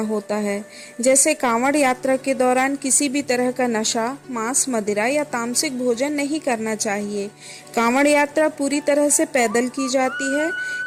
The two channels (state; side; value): identical; both; correlation 1.00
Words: है। जैसे कांवड़ यात्रा के दौरान किसी भी तरह का नशा, मांस, मदिरा या तामसिक भोजन नहीं करना चाहिए। कांवड़ यात्रा पूरी तरह से पैदल की जाती है।